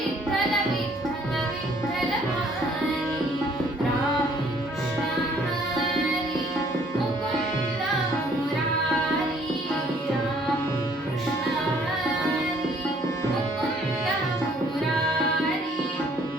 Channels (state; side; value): normal; both; correlation 0.61